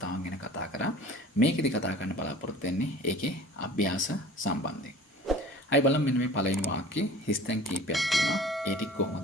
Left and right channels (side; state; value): both; normal; correlation 0.44